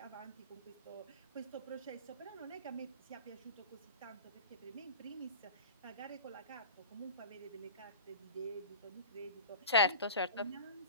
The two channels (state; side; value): inverted; both; correlation -0.34